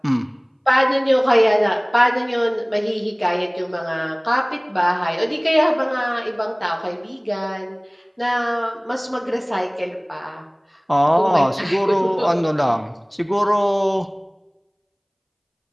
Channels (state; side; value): identical; both; correlation 1.00